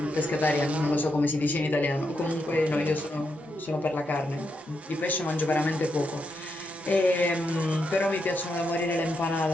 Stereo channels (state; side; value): normal; both; correlation 0.82